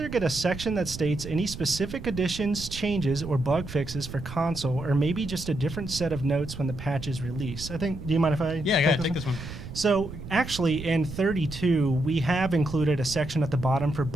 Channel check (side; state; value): right; noise; rumble, 11 dB below the sound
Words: get a section that states any specific additions, changes, or bug fixes for console, or maybe just a different set of notes when the patch is released? Do you mind if I take this one? So actually in 32, we have included a section at the bottom for